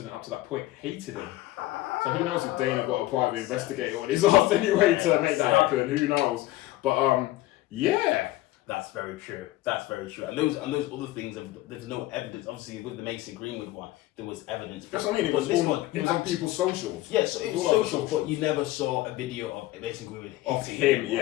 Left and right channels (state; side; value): quieter; right; 16.9 dB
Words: up to that point hated him. So who knows if Dana got a private investigator on his ass anyway to make that happen, who knows. But That's very true. And those other things, there's no evidence. Obviously, with the Mason Greenwood one, there was evidence. That's what I mean. It was on people's socials. Yeah, so it was social, but you never saw a video of Mason Greenwood hitting him.